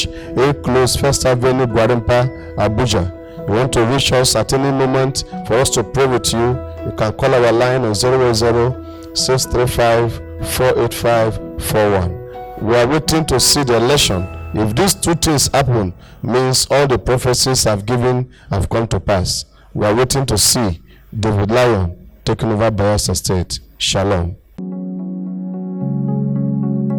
8 Close, First Avenue, Gwarimpa, Abuja. You want to reach us at any moment for us to pray with you, you can call our line on 080-635-48541. We are waiting to see the election. If these two things happen, means all the prophecies I've given have come to pass. We are waiting to see David Lion taking over Bayelsa State. Shalom.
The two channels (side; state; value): both; identical; correlation 1.00